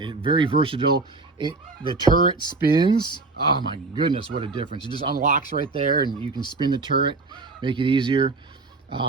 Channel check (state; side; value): quieter; left; 3.7 dB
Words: very versatile. The turret spins. Oh my goodness, what a difference. It just unlocks right there and you can spin the turret, make it easier.